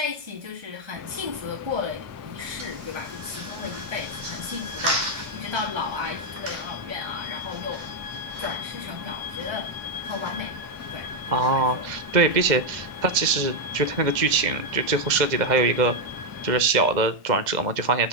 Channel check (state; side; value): late; left; 2.0 ms